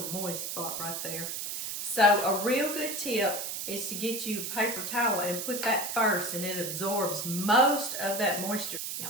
moist spot right there. So a real good tip is to get you a paper towel and put that first, and it absorbs most of that moisture.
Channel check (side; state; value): right; noise; hiss, 4 dB below the sound